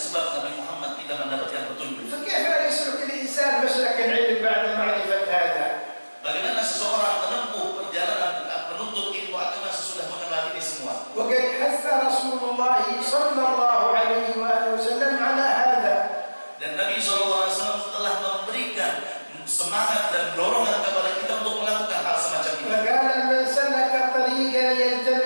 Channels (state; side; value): inverted; both; correlation -1.00